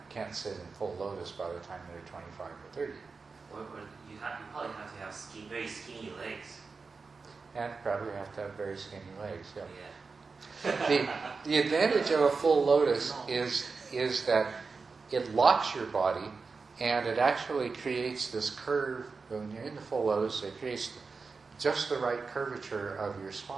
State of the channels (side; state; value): left; quieter; 4.5 dB